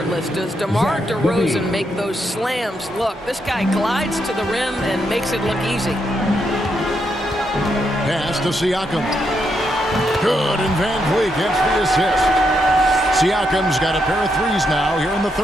does DeMar DeRozan make those slams look? This guy glides to the rim and makes it look easy. Pass to Siakam. Good, and Van Vliet gets the assist. Siakam's got a pair of threes now here in the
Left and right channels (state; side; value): normal; both; correlation 0.80